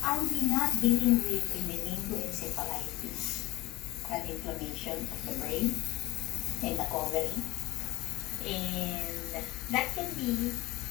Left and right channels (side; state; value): right; quieter; 19.8 dB